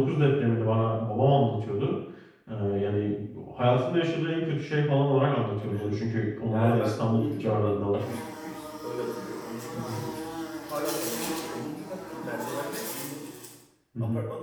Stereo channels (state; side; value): identical; both; correlation 1.00